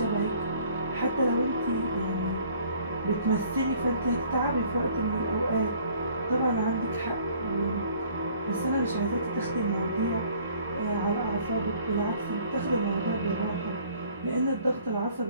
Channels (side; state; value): both; inverted; correlation -0.56